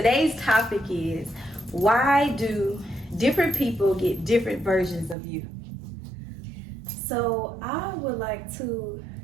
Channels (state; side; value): drops out; left; at 5.2 s